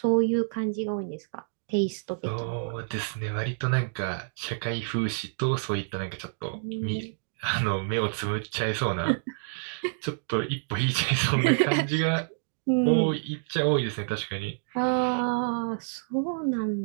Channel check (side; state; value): left; silent; digital silence